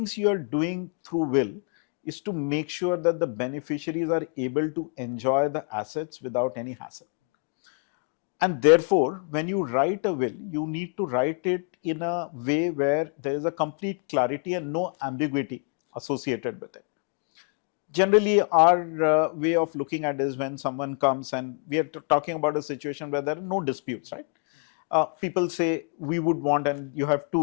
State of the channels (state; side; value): quieter; right; 39.4 dB